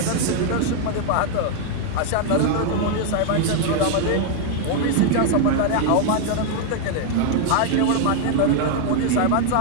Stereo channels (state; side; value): different; both; correlation 0.00